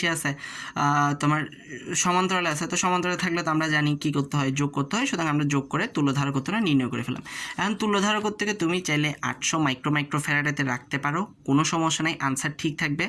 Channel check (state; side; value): identical; both; correlation 1.00